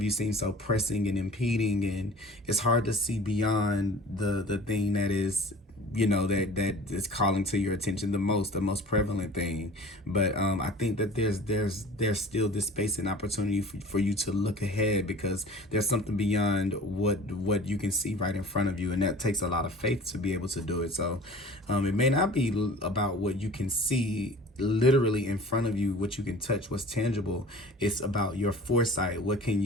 you seem so pressing and impeding, and it's hard to see beyond the thing that is, you know, that is calling to your attention the most prevalent thing. But I think that there's still this space and opportunity for you to look ahead, because there's something beyond what you can see right in front of you, and that takes a lot of faith to be able to do it. So it may not be about what you can see literally in front of you, what you can touch, what's tangible. It's about your foresight. What can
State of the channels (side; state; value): both; normal; correlation 0.43